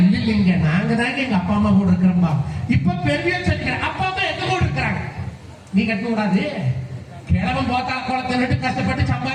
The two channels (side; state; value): both; identical; correlation 1.00